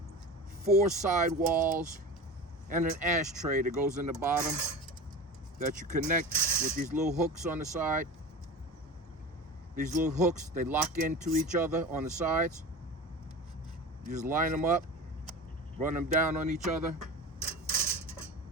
4 side walls and an ashtray that goes in the bottom that you connect with these little hooks on the side. These little hooks, they lock into each other on the sides. You just line them up, run them down on each other,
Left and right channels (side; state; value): both; normal; correlation 0.31